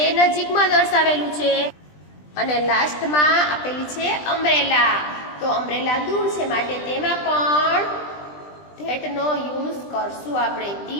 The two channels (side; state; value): right; late; 20 ms